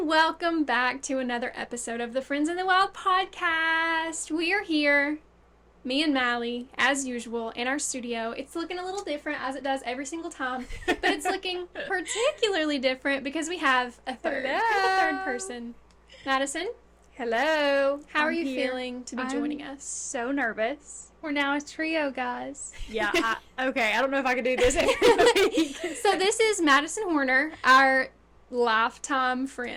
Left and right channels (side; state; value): both; identical; correlation 1.00